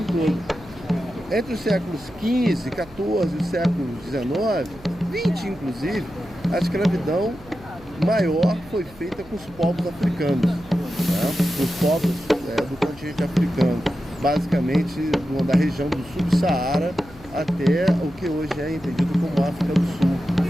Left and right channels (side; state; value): right; noise; hum, 22 dB below the sound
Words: todo. Entre os séculos XV, XIV e o século XIX, XX inclusive, a escravidão maior foi feita com os povos africanos, né? Os povos do continente africano, basicamente da região do sul do Saara até o que hoje é entendido como África do Sul,